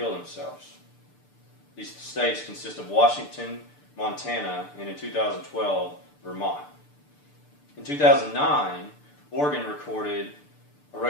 themselves. These states consist of Washington, Montana, and in 2012, Vermont. In 2009, Oregon recorded a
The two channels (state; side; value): late; right; 6.8 ms